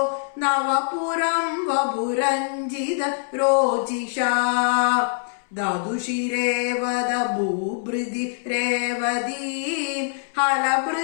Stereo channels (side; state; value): right; silent; 63 dB below the other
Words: നവപുരം വപുരഞ്ജിത രോചിഷാ ദദുഷിരേവദ ഭൂഭൃതി രേവതീം